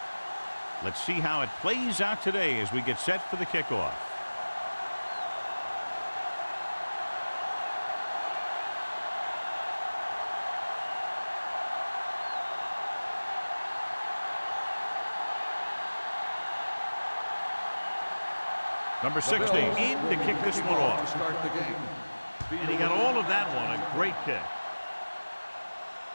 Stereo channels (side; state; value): both; inverted; correlation -1.00